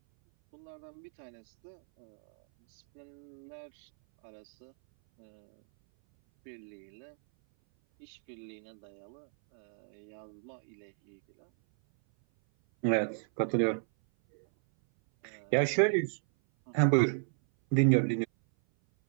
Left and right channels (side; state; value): left; silent; 56 dB below the other